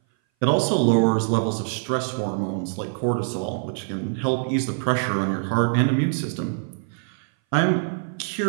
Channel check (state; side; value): silent; left; 58 dB below the other